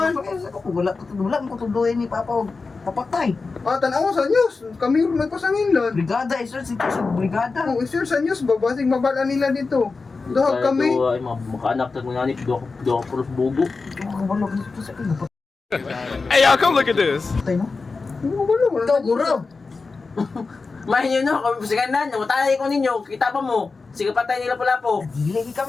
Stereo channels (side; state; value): right; quieter; 4.2 dB